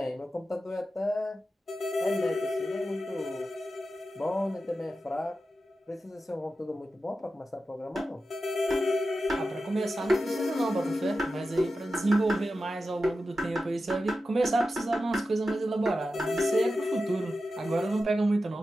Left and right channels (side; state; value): both; normal; correlation 0.92